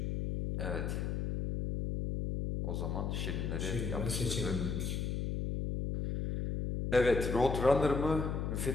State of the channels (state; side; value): noise; left; hum, 1 dB below the sound